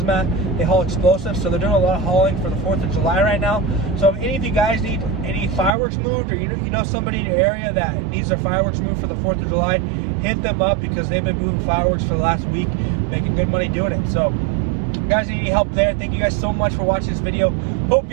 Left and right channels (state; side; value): drops out; left; at 5.7 s